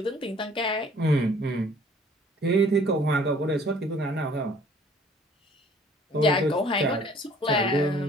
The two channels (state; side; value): normal; both; correlation 0.55